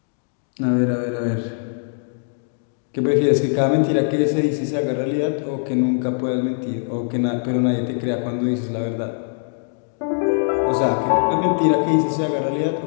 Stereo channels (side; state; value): right; silent; digital silence